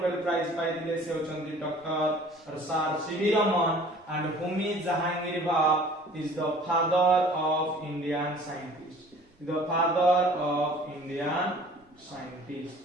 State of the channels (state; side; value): normal; both; correlation 0.49